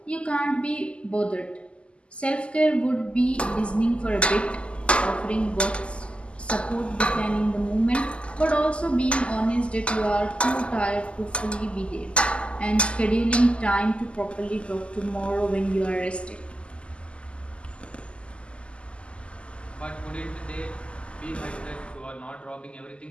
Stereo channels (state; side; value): late; right; 0.054 ms